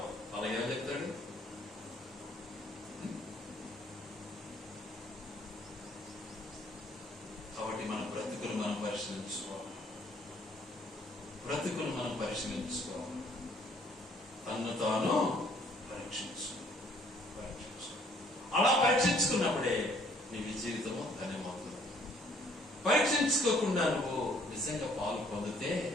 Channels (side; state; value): both; normal; correlation 0.62